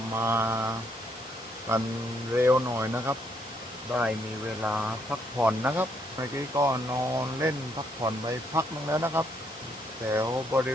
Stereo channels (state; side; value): normal; both; correlation 0.73